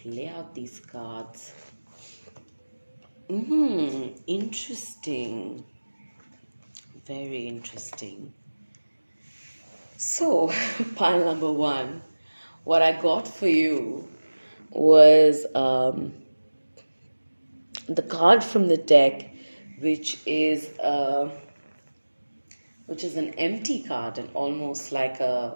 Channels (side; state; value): both; inverted; correlation -1.00